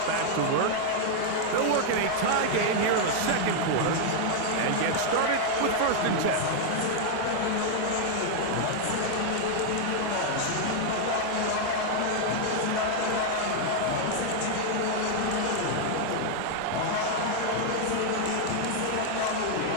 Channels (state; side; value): different; both; correlation 0.00